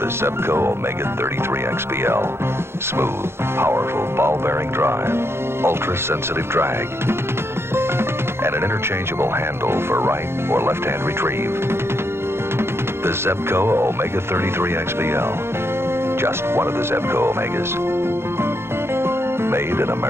the Zebco Omega 33 XPL. Smooth, powerful ball-bearing drive, ultra-sensitive drag, and an interchangeable handle for right or left-hand retrieve. The Zebco Omega 33 XPL. Just one of the Zebco Omegas. Made in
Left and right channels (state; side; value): late; left; 0.12 ms